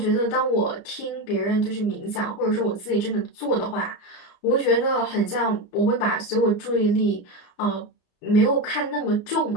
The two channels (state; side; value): late; right; 33 ms